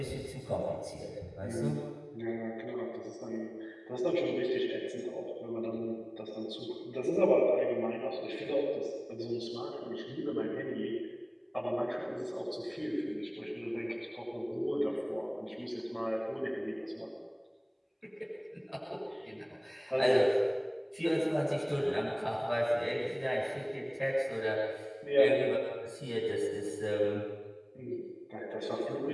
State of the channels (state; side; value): identical; both; correlation 1.00